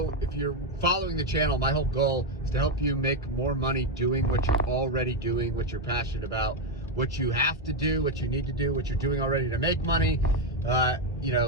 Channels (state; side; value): normal; both; correlation 0.07